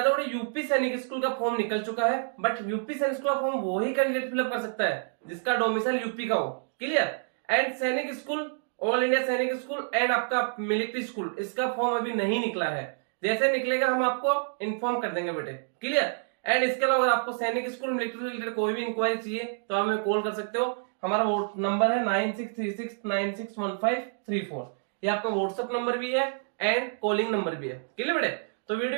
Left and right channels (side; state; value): left; silent; digital silence